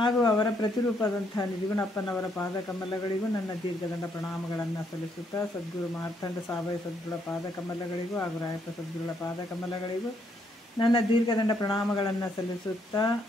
ಅವರ ಪ್ರತಿರೂಪದಂಥ ನಿಜಗುಣಪ್ಪನವರ ಪಾದಕಮಲಗಳಿಗೂ ನನ್ನ ದೀರ್ಘದಂಡ ಪ್ರಣಾಮಗಳನ್ನು ಸಲ್ಲಿಸುತ್ತಾ, ಸದ್ಗುರು ಮಾರ್ಥಂಡ ಸಾವಯ ಸದ್ಗುರುಳ ಪಾದಕಮಲಗಳಿಗೂ ಹಾಗೂ ರಾಯಪ್ಪ ಸದ್ಗುರುಳ ಪಾದಕಮಲಗಳಿಗೂ ನನ್ನ ದೀರ್ಘದಂಡ ಪ್ರಣಾಮಗಳನ್ನು ಸಲ್ಲಿಸುತ್ತಾ,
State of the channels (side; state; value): both; normal; correlation 0.73